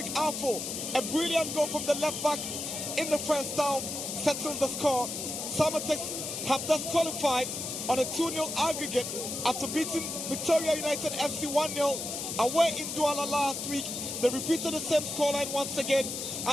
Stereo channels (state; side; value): noise; left; hiss, 5 dB below the sound